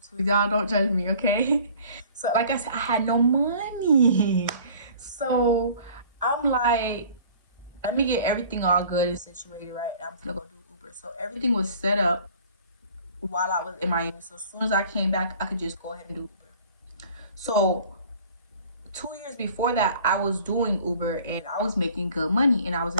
too. Y'all don't judge me, okay? So like I said, I had no money. So I'm like, let me get everything all good and situated, right? I'm gonna go do Uber. So everything was set up while I was in Miami. So as soon as I came back, I could just go ahead and do Uber. So 2 years before that, I was doing Uber and I was making good money and I was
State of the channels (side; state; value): both; inverted; correlation -0.49